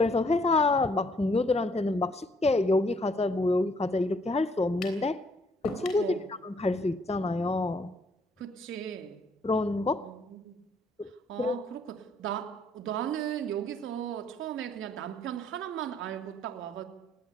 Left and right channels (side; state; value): both; normal; correlation 0.66